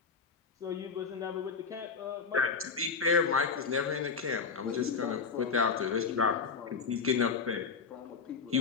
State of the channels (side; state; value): right; quieter; 5.4 dB